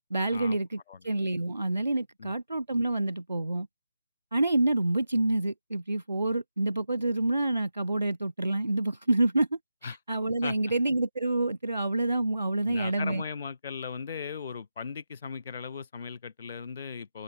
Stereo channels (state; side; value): inverted; both; correlation -0.90